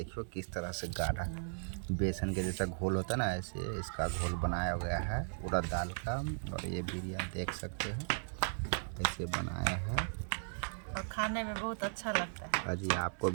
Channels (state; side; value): silent; left; digital silence